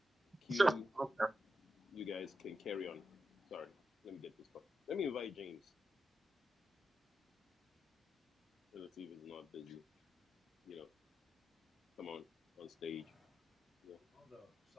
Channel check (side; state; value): both; normal; correlation 0.88